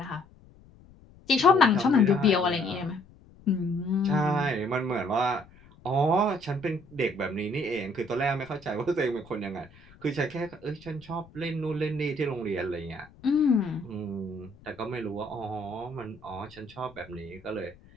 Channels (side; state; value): left; noise; rumble, 24 dB below the sound